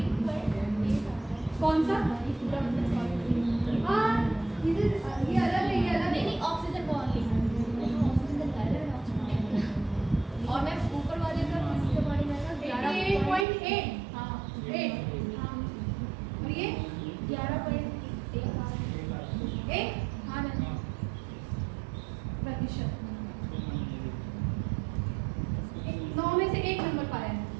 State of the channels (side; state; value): left; drops out; at 13.5 s